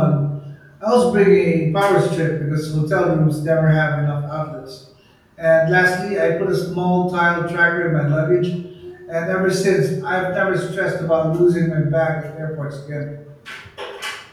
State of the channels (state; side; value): identical; both; correlation 1.00